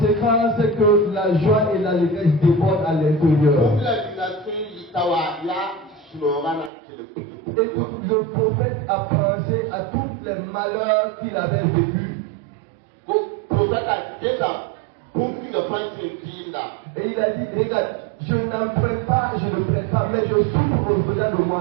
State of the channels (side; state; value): left; drops out; at 6.7 s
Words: c'est que la joie et l'allégresse débordent à l'intérieur. Écoute, le prophète a pensé à tous les malheurs qu'il avait vécus. Et il a dit, regarde, je n'emprunte pas, je ne prête pas, mais je souffre au-delà de